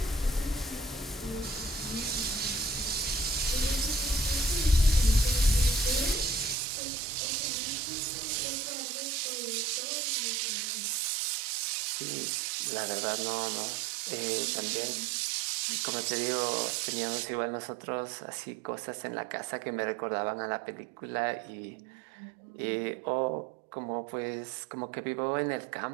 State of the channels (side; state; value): left; drops out; at 6.6 s